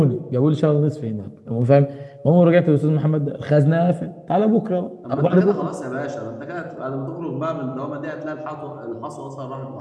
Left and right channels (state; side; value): identical; both; correlation 1.00